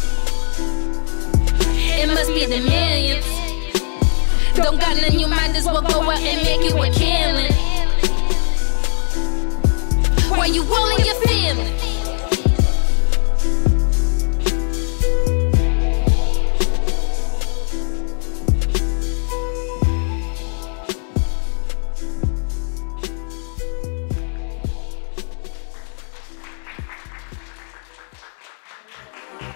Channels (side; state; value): right; silent; 67 dB below the other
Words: It must be the millions. Don't got none, you might as well go out and make you a killing. Why you willing